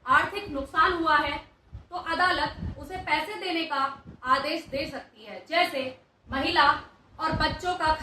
आर्थिक नुकसान हुआ है तो अदालत उसे पैसे देने का आदेश दे सकती है, जैसे महिला और बच्चों का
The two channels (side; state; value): both; identical; correlation 1.00